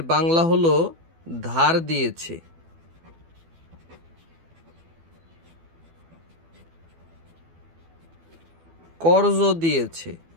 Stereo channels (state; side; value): late; left; 12 ms